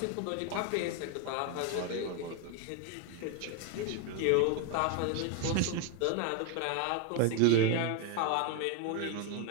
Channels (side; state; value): both; different; correlation 0.01